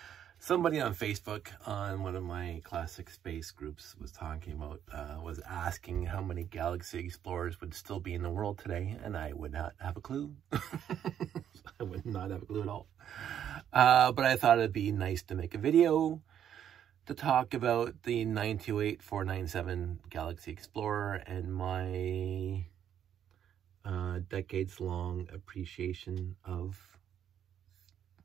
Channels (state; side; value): quieter; left; 9.6 dB